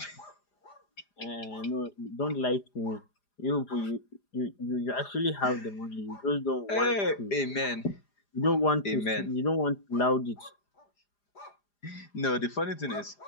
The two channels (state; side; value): late; right; 4.9 ms